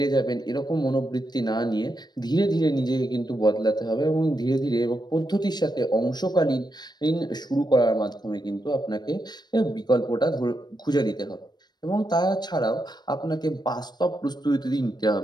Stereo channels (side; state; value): right; late; 0.20 ms